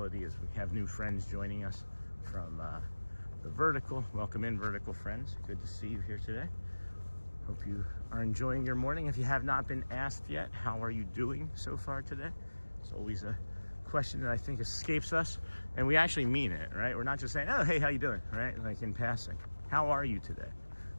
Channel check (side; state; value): both; inverted; correlation -1.00